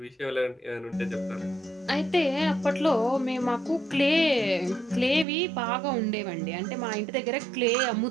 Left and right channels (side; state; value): left; drops out; at 5.2 s